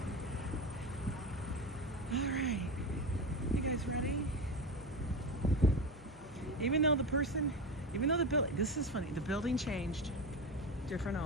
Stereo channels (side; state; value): both; normal; correlation 0.22